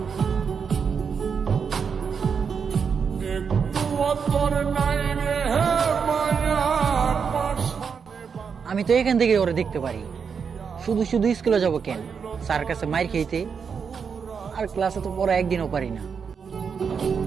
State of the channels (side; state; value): left; quieter; 6.3 dB